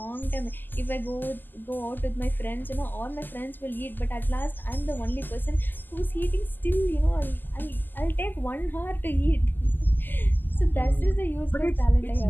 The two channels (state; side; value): late; right; 0.090 ms